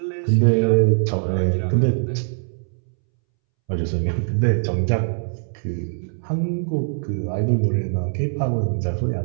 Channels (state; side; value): silent; left; 64 dB below the other